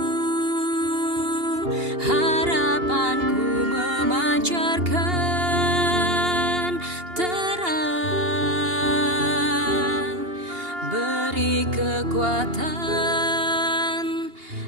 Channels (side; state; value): left; late; 2.8 ms